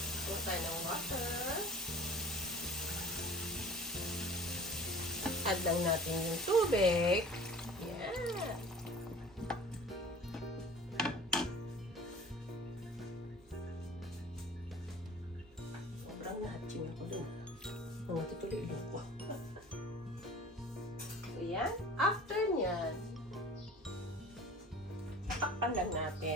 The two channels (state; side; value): normal; both; correlation 0.45